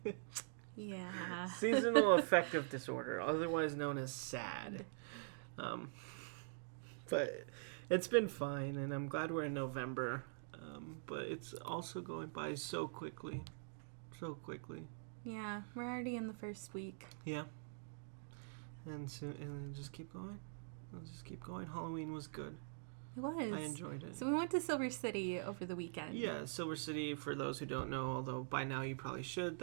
Yeah. Seasonal affective disorder, otherwise known as SAD. But it's been fine, and I'm glad we're in November. But it's also going by so quickly. Yeah, we're already in the first week. Yeah. And just keep going. Halloween was good. It was. I enjoyed it. So we went to Silver City over the weekend. Yeah, Silver City, for those who don't know, although by now you probably should,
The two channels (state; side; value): silent; left; digital silence